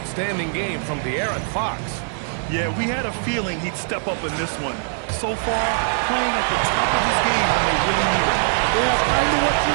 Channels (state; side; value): silent; left; 62 dB below the other